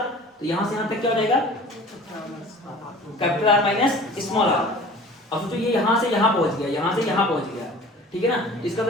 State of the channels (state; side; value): normal; both; correlation 0.44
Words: तो यहाँ से यहाँ तक क्या हो जाएगा, capital R minus small R. अब सोचो ये यहाँ से यहाँ पहुंच गया, यहाँ से यहाँ पहुंच गया, ठीक है ना। इसका